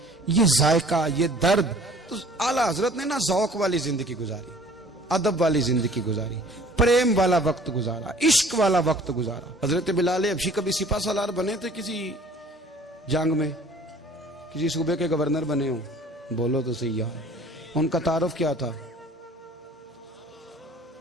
یہ ذائقہ، یہ درد. تو اعلیٰ حضرت نے نا ذوق والی زندگی گزاری، ادب والی زندگی گزاری، پریم والا وقت گزارا، عشق والا وقت گزارا. حضرت بلال حبشی کبھی سپاہ سالار بنے تھے کسی جنگ میں، کسی صوبے کے گورنر بنے ہوں؟ بولو تو صحیح یار. ان کا تعارف کیا تھا؟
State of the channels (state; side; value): normal; both; correlation 0.51